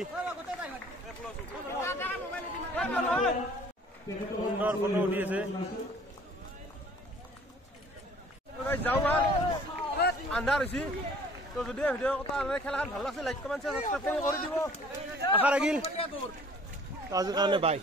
সুন্দৰ ফটো উঠি আছে যাওঁ আন্ধাৰ হৈছে তো যদি ভিডিঅ' খেলাখন ভাল লাগিছে লাইক কমেণ্ট শ্বেয়াৰ সাবস্ক্ৰাইব কৰি দিব আশা ৰাখিল আজিৰ কাৰণে বাই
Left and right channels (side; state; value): both; normal; correlation 0.53